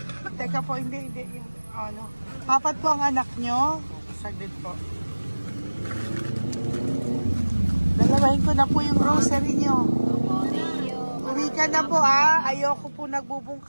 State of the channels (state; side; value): inverted; both; correlation -1.00